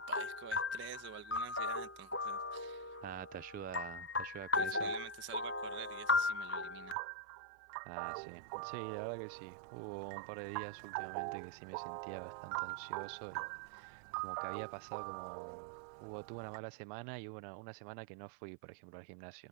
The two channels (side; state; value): left; drops out; at 7.0 s